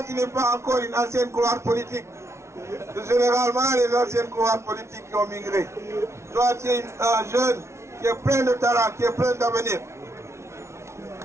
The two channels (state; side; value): late; left; 0.13 ms